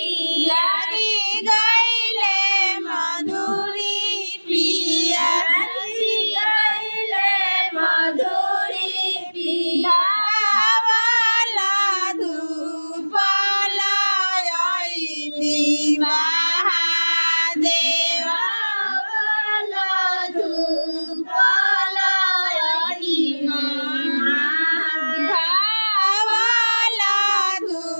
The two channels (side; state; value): both; inverted; correlation -1.00